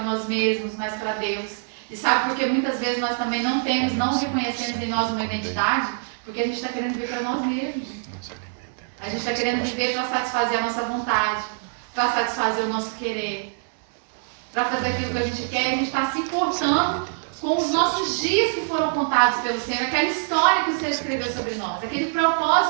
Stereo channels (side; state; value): left; silent; digital silence